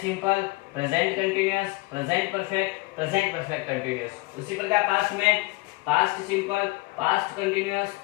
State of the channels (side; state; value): right; quieter; 23.6 dB